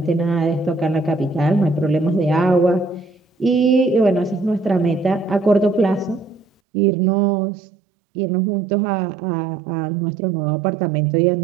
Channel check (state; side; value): drops out; left; at 6.5 s